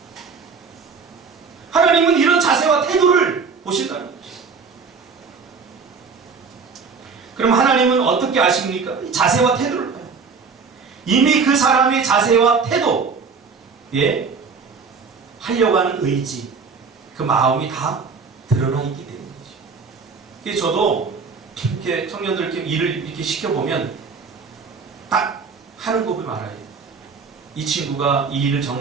하나님은 이런 자세와 태도를 보신다는 거죠. 그럼 하나님은 어떻게 아십니까? 자세와 태도를 봐요. 이미 그 사람의 자세와 태도, 하려고 하는 의지, 그 마음이 다 드러나 있기 때문이죠. 그래서 저도 이렇게 청년들께 일을 이렇게 시켜보면 딱 하는 거 보면 알아요. 이 친구가 이 일을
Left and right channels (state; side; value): quieter; left; 5.2 dB